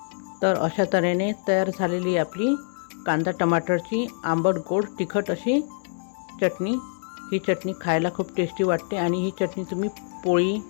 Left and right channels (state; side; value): silent; right; 62 dB below the other